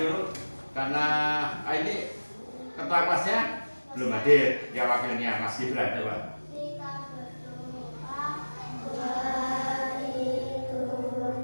karena ini ketua kelasnya belum hadir. Ya wakilnya Mas Gibran, coba. Kita berdoa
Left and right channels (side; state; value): both; inverted; correlation -1.00